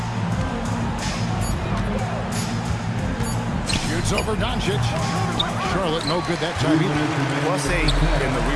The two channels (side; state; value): both; identical; correlation 1.00